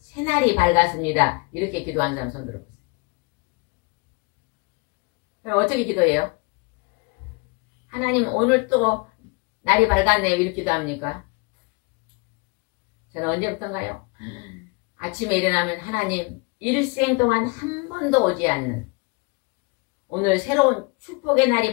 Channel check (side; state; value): right; quieter; 28.9 dB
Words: 밝았습니다. 이렇게 기도하는 사람 손 들어보세요. 그럼 어떻게 기도해요? 하나님 오늘 또 날이 밝았네요. 이렇게 기도합니까? 저는 언제부턴가요? 아침에 일어나면 하나님 일생 동안 한 번도 오지 않는 오늘 새로운 축복의 날이